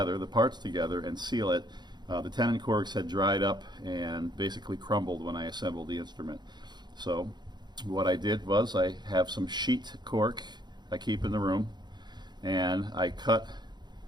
the parts together, and seal it. The tenon corks had dried up and basically crumbled when I assembled the instrument. So what I did was I have some sheet cork I keep in the room, and I cut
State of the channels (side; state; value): left; late; 0.21 ms